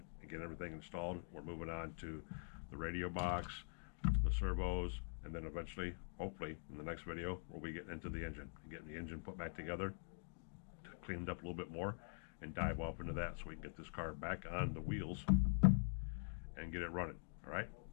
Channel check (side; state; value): right; silent; digital silence